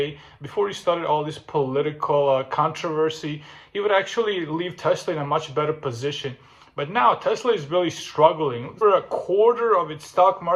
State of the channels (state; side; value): identical; both; correlation 1.00